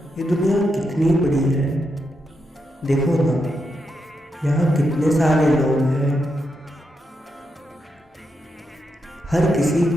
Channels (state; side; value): normal; both; correlation 0.84